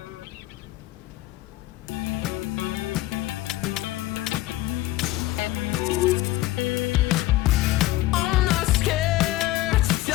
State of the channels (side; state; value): right; quieter; 16.4 dB